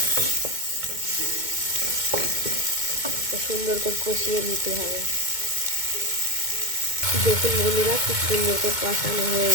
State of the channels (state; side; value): late; left; 2.2 ms